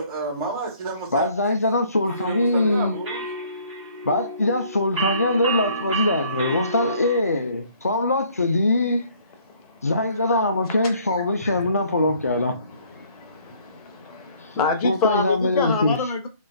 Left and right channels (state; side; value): inverted; both; correlation -0.60